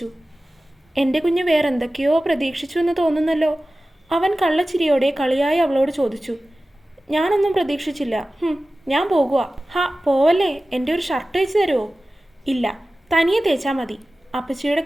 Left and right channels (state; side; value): normal; both; correlation 0.96